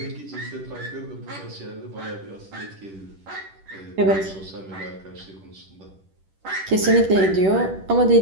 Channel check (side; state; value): left; late; 10 ms